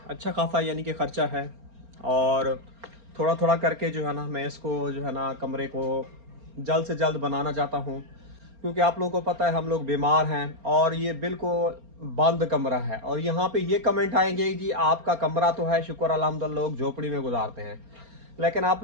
अच्छा खासा यानी कि ख़र्चा है। और थोड़ा थोड़ा करके जो है ना मैं इसको जो है ना कमरे को जल्द से जल्द बनाना चाहता हूँ, क्योंकि आप लोगों को पता है हम लोग बीमार हैं और ये बिल्कुल बंद कमरा है। और यहाँ पे ये कमेंट आएंगे जी आपका कमरा तो है, शुक्र अल्हम्दुलिल्लाह लोग झोपड़ी में गुजारते हैं, लेकिन आप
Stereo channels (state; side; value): late; left; 4.3 ms